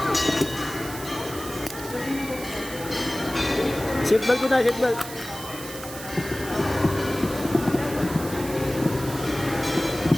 Seatbelt ko na, seatbelt.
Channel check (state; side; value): noise; right; hiss, 12 dB below the sound